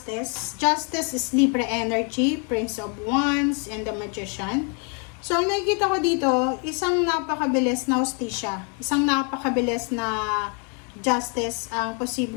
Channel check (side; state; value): right; quieter; 38.2 dB